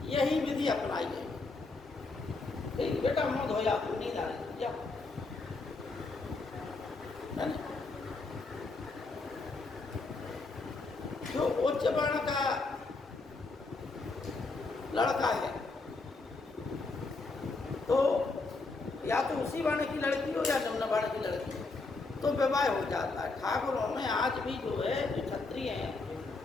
यही विधि अपनाई है। ठीक, बेटा मौत हो जाती, नींद आ रही क्या, जो उच्च वर्ण का लड़का है तो या तो उसी वर्ण की लड़की हो या निम्न वर्ण की लड़की हो, तो विवाह हो जाता है। ठाकुरों में आज भी जो है जो क्षत्रिय हैं,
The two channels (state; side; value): quieter; right; 3.7 dB